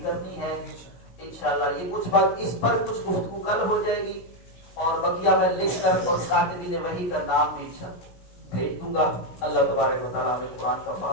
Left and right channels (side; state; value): right; late; 17 ms